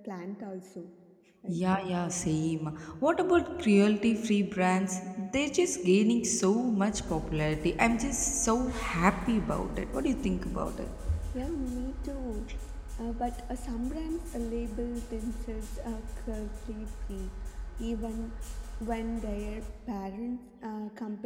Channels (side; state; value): both; identical; correlation 1.00